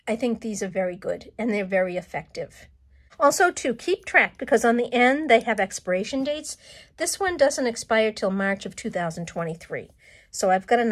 think these are very good, and they're very effective. Also, to keep track, because on the end they have expiration dates. This one doesn't expire till March of 2023. So I've got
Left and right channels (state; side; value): identical; both; correlation 1.00